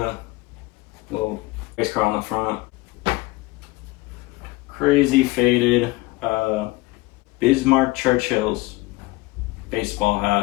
little race car on the front. Crazy faded Bismarck Churchill's baseball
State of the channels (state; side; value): quieter; right; 21.2 dB